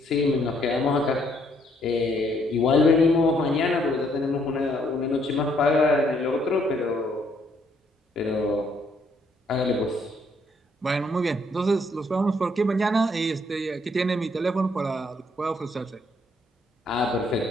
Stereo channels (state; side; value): normal; both; correlation 0.69